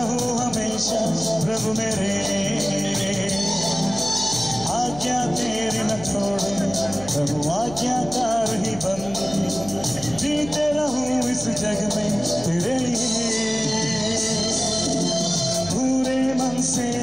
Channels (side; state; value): left; noise; hum, 15 dB below the sound